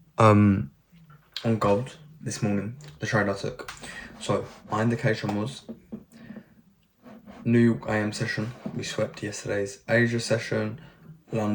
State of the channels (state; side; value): identical; both; correlation 1.00